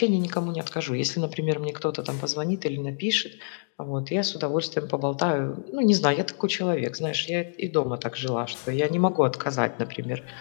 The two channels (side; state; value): right; silent; digital silence